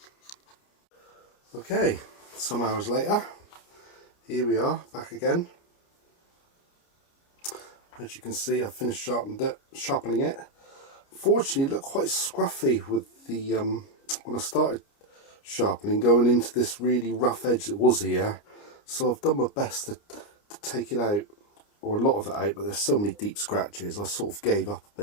Okay, some hours later, here we are back again. As you can see, I've finished sharpening it. Fortunately, it looked quite scruffy with the when I started sharpening, going into this really rough edge that was here. So I've done my best to take it out, or a lot of it out, but there's so many deep scratches I sort of gave up a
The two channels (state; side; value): late; right; 29 ms